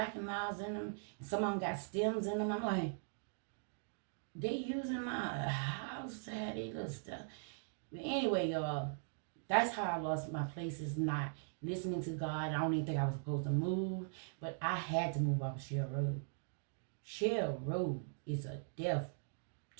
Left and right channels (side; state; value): left; silent; digital silence